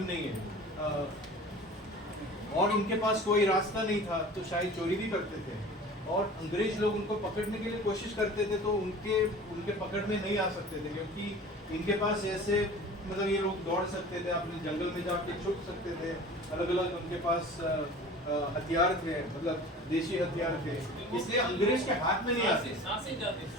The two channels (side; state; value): both; normal; correlation 0.41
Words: नहीं है, और उनके पास कोई रास्ता नहीं था तो शायद चोरी भी करते थे, और अंग्रेज लोग उनको पकड़ने के लिए कोशिश करते थे तो उनके पकड़ में नहीं आ सकते थे, क्योंकि इनके पास ऐसे मतलब ये लोग दौड़ सकते थे, अपने जंगल में जाके छुप सकते थे, अलग अलग उनके पास हथियार थे, मतलब देशी हथियार थे, इसलिए अंग्रेज के हाथ में नहीं आते। सांसी जाती,